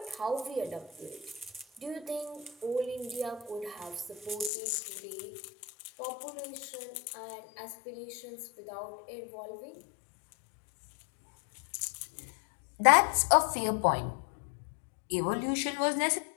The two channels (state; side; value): drops out; right; at 4.5 s